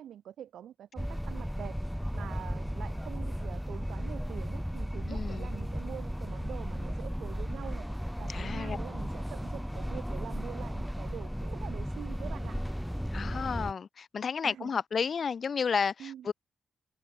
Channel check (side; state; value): both; normal; correlation 0.92